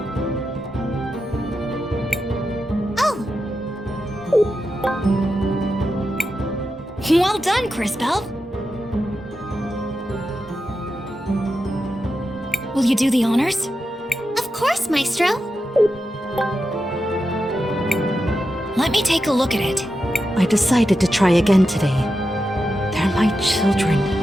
Oh! Well done, Crisbell. Will you do the honors? Of course, Maestro. Let me take a look at it. I decided to try again today. They're my children.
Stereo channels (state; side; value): normal; both; correlation 0.89